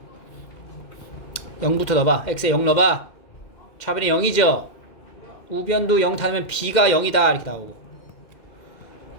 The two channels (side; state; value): right; late; 2.1 ms